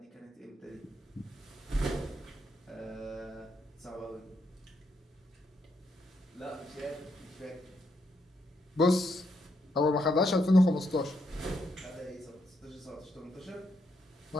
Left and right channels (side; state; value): both; normal; correlation 0.78